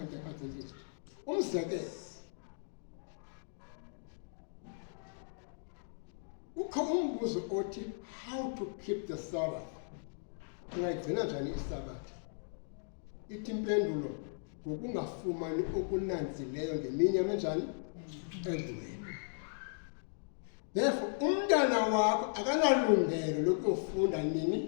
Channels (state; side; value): silent; right; digital silence